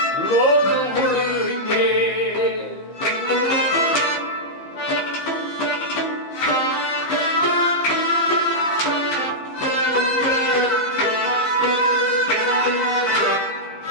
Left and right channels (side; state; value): right; late; 15 ms